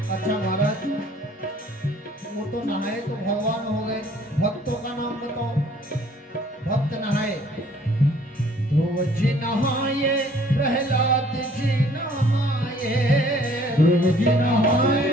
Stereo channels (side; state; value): both; normal; correlation 0.58